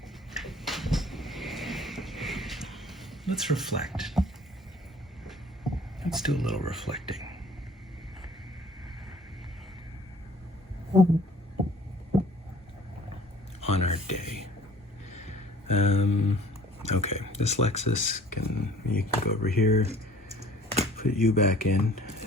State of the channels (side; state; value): both; normal; correlation 0.51